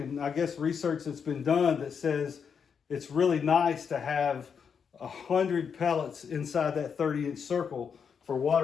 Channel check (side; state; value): right; quieter; 6.7 dB